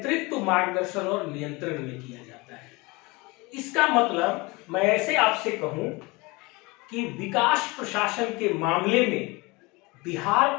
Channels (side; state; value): right; quieter; 24.8 dB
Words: मार्गदर्शन और नियंत्रण में किया जाता है। इसका मतलब मैं ऐसे आपसे कहूं कि विकास प्रशासन के मामले में बिहार